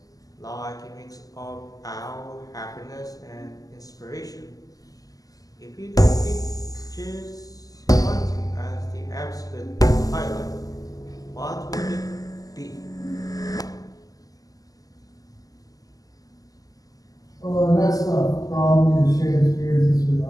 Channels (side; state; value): right; late; 0.17 ms